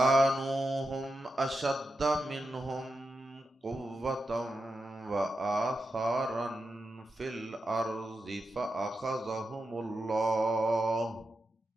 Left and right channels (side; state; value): both; normal; correlation 0.88